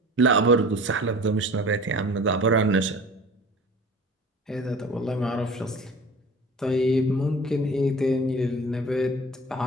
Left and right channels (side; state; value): both; normal; correlation 0.41